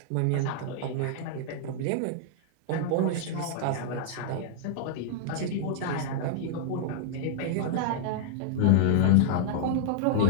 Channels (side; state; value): both; different; correlation -0.01